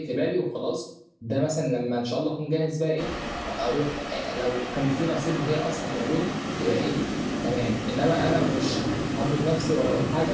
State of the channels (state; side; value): identical; both; correlation 1.00